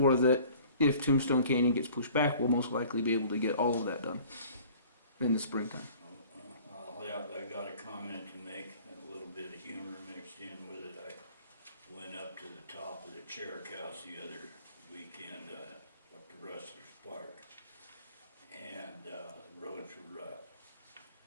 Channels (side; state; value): both; inverted; correlation -0.49